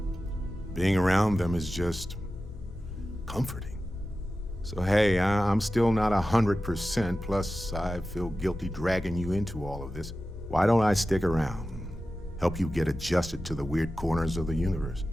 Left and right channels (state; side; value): normal; both; correlation 0.94